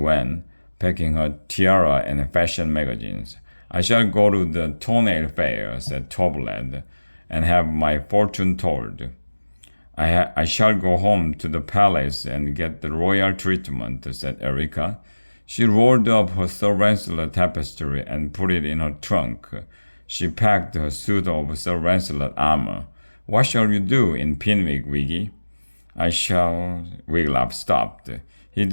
packing her tiara and fashion magazines. I shall go to the toenail fair, said Toblad, and have my fortune told. I shall go home to the palace and get the royal treatment, said Erica. She rolled up her Sir Lancelot tapestry and put it in her trunk. She packed her suit of Sir Lancelot armor. What shall you do in Pinwick, Wiggy? I shall... Wiglaf stopped. He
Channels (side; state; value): both; inverted; correlation -1.00